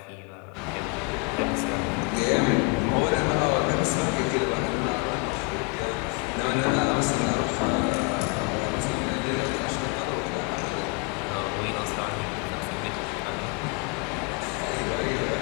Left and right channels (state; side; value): quieter; right; 31.1 dB